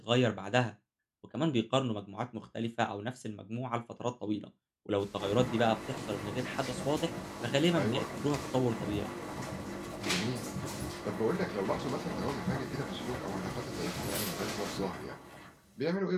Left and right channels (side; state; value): both; identical; correlation 1.00